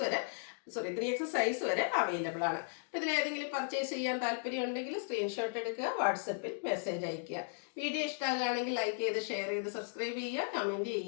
വരെ 3XL സൈസ് വരെ അവൈലബിൾ ആണ്. അപ്പോൾ ഇതിലേതെങ്കിലും പർച്ചേസ് ചെയ്യാൻ താല്പര്യം ഉണ്ടെങ്കിൽ സ്ക്രീൻഷോട്ട് എടുക്കുക, വാട്സപ്പിൽ മെസ്സേജ് അയയ്ക്കുക. വീഡിയോ ഇഷ്ടമാകുകയാണെങ്കിൽ ലൈക്ക് ചെയ്ത് ഷെയർ ചെയ്ത് സബ്സ്ക്രൈബ് ചെയ്യുക, കമൻറ്റ്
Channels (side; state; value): right; silent; digital silence